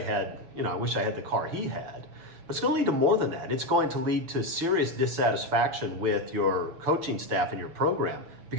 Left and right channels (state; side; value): late; left; 6.4 ms